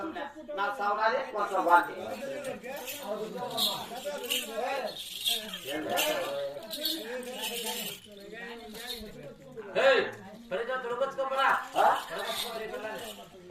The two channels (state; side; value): identical; both; correlation 1.00